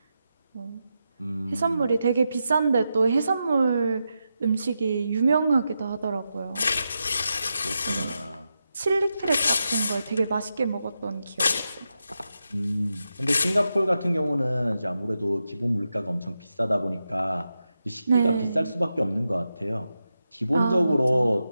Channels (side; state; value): both; inverted; correlation -0.88